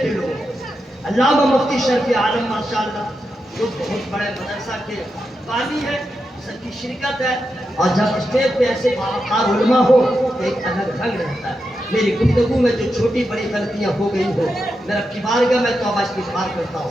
لوگ علامہ مفتی شرف عالم ماشاءاللہ جو بہت بڑے مدرسہ کے بانی ہے سب کی شرکت ہے اور جب اسٹیج پہ ایسے باوقار علماء ہو تو ایک الگ رنگ رہتا ہے میری گفتگو میں جو چھوٹی بڑی غلطیاں ہو گئی ہو میرا کی بارگاہ میں توبہ استغفار کرتا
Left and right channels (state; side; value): normal; both; correlation 0.87